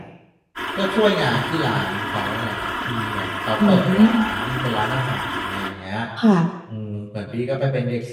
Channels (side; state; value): both; identical; correlation 1.00